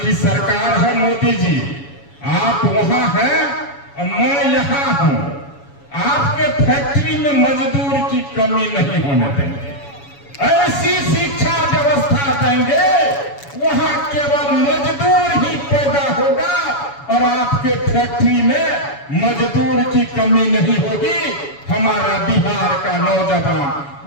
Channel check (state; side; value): late; right; 7.1 ms